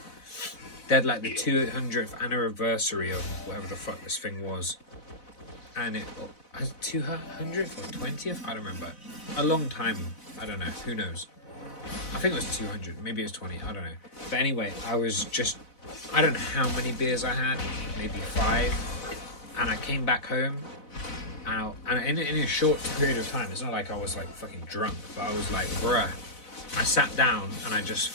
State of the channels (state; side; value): late; right; 4.0 ms